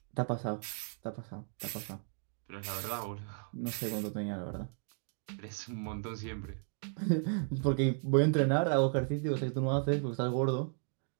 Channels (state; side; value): silent; left; 55 dB below the other